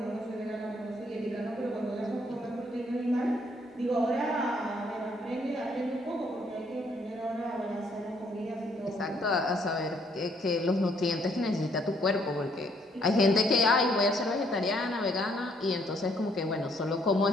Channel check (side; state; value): both; normal; correlation 0.68